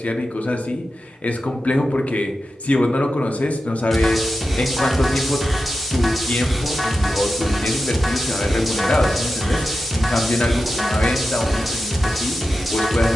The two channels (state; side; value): normal; both; correlation 0.91